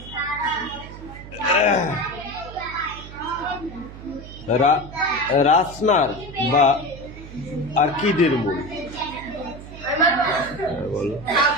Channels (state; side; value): noise; right; hum, 14 dB below the sound